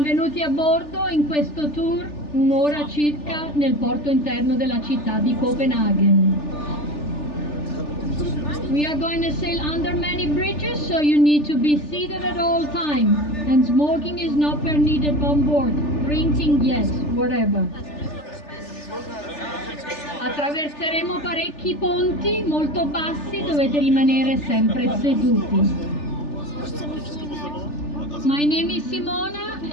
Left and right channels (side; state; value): right; late; 3.4 ms